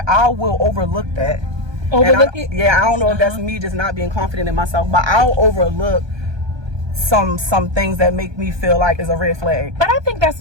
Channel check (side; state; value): left; late; 1.2 ms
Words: I will overlook that. Overlook it? Yeah, I don't know if that's me just not being confident in myself, but I'll overlook some things that make me feel like is a red flag. But I think